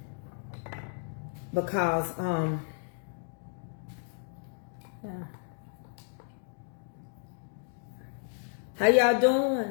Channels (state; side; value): silent; right; 56 dB below the other